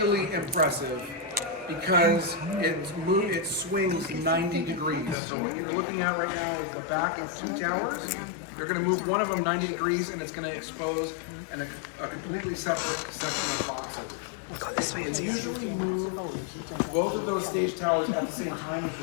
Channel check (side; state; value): right; drops out; at 5.2 s